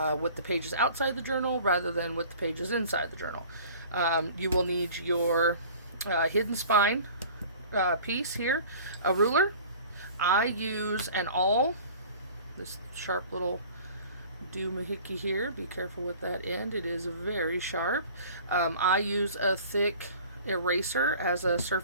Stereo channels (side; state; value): both; inverted; correlation -0.45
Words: with the pages outside the journal rather than with the pages inside the journal. You will need your hidden spine piece here, a ruler. I use an awl, this sharp little doohickey here. Be careful with that end, it is very sharp. I use a thick eraser as a